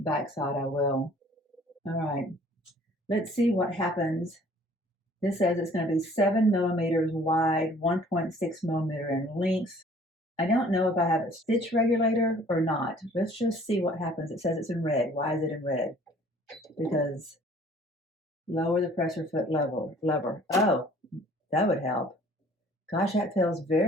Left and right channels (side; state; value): both; normal; correlation 0.54